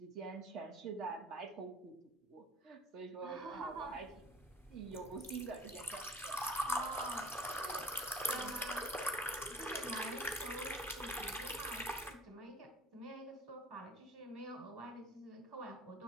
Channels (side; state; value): both; normal; correlation 0.46